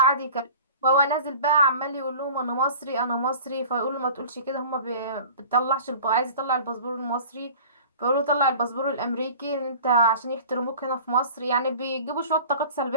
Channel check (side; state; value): both; inverted; correlation -0.43